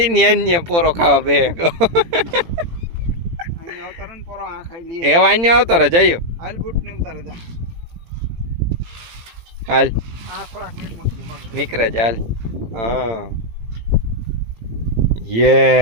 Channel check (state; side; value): late; left; 18 ms